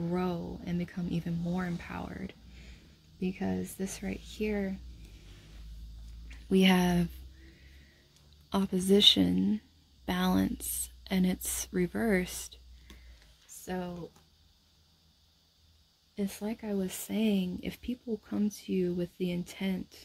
and become even more empowered. Because this right here, we have opposition, balance, and it's reversed. So it's like I was saying, if people come to you with the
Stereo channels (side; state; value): both; identical; correlation 1.00